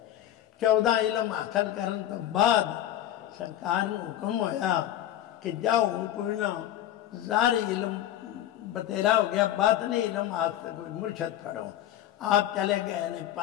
14 इलम हासिल करने तो बाद सरकार ने हुक्म होया कि जाओ कोई ना ज़ारी इलम बतेरा हो गया, बातनी इलम हासिल कोई मुर्शद पढ़ो। आप चले गए ने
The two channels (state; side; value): quieter; right; 12.2 dB